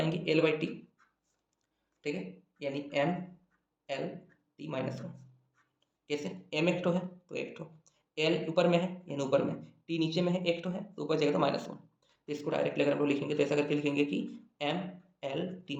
एल बाई टी, ठीक है, यानी M L T minus one. कैसे, एम एक ठो है तो एक ठो, एल ऊपर में है यानी ऊपर में, टी नीचे में है एक ठो है तो ऊपर जाएगा तो माइनस वन। तो इसको डायरेक्टली अगर हम लोग लिखेंगे तो ऐसा करके लिखेंगे कि एम एल टी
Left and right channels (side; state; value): both; identical; correlation 1.00